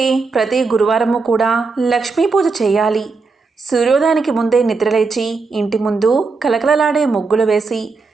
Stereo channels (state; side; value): quieter; left; 4.3 dB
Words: ప్రతి గురువారము కూడా లక్ష్మీ పూజ చేయాలి. సూర్యోదయానికి ముందే నిద్రలేచి ఇంటి ముందు కలకలలాడే ముగ్గులు వేసి